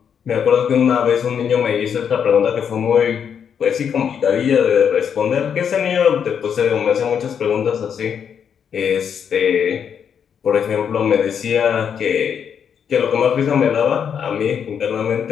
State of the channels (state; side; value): quieter; right; 7.7 dB